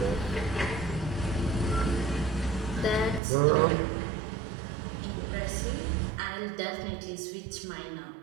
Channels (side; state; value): left; drops out; at 3.2 s